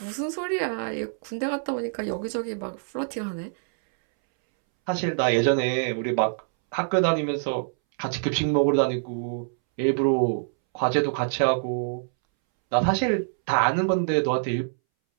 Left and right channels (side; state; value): left; silent; 61 dB below the other